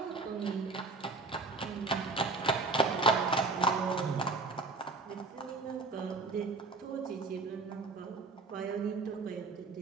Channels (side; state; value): left; quieter; 3.7 dB